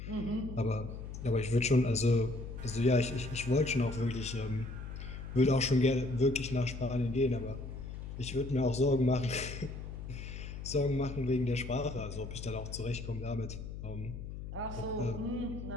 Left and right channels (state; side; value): noise; left; hum, 9 dB below the sound